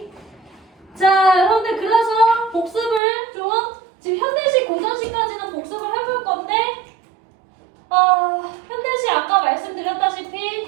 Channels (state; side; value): drops out; left; at 3.0 s